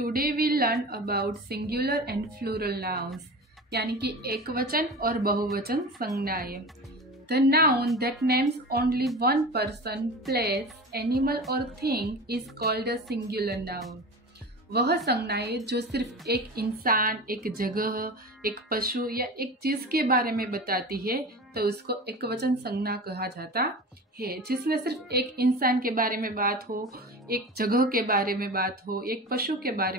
we learn about singular and plural nouns यानी कि एकवचन और बहुवचन संज्ञाएं। The noun that names only one person, place, animal और thing is called a singular noun. वह संज्ञाएं जो सिर्फ एक इंसान, एक जगह, एक पशु या एक चीज के बारे में बताती है तो उसको एकवचन संज्ञा कहा जाता है। जिसमें सिर्फ एक इंसान के बारे में बात हो, एक जगह के बारे में बात हो, एक पशु के बारे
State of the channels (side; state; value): both; normal; correlation 0.32